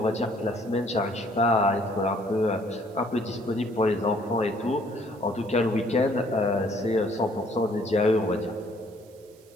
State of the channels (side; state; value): right; noise; hiss, 29 dB below the sound